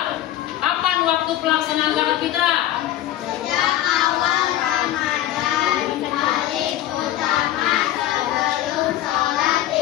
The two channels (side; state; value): right; quieter; 13.2 dB